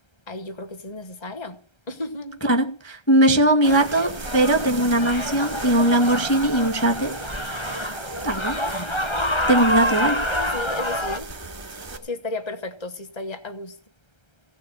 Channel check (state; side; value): late; right; 1.3 ms